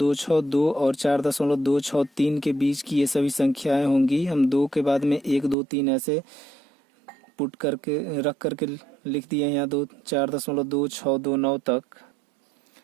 और 4.263 के बीच की ये सभी संख्याएं होंगी। हम 2 के बाद में 1, 2, 3 ऐसे पुट करके रख करके लिख दिए यहाँ 4.2629 तक।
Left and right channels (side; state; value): left; drops out; at 5.6 s